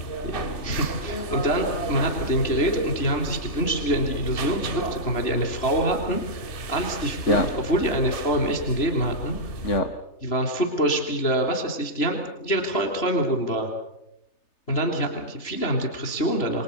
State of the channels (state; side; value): late; right; 3.3 ms